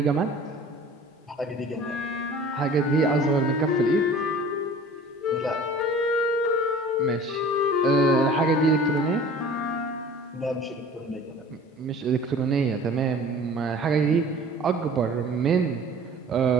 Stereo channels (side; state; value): both; normal; correlation 0.45